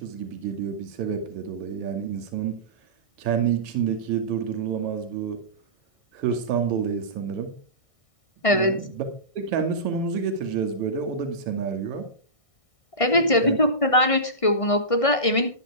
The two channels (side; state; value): right; late; 1.6 ms